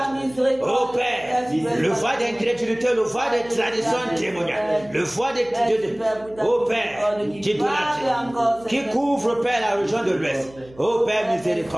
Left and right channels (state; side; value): noise; right; hum, 23 dB below the sound